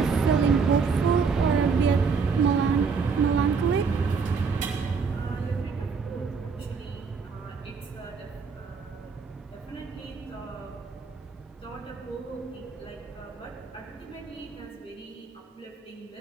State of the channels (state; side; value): quieter; left; 5.3 dB